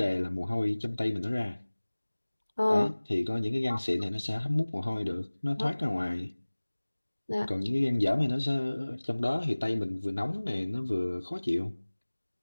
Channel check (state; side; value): inverted; both; correlation -1.00